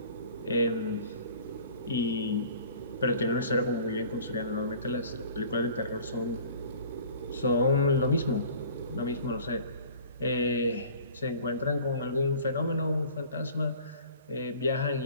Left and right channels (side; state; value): both; inverted; correlation -0.48